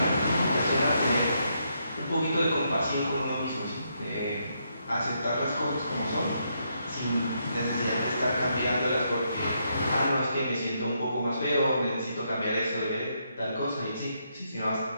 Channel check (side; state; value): both; inverted; correlation -0.78